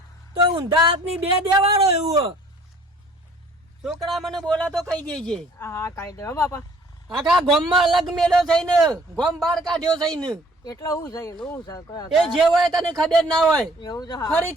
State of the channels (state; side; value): normal; both; correlation 0.56